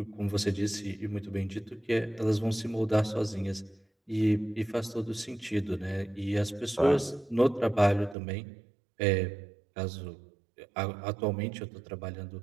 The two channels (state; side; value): drops out; left; at 8.2 s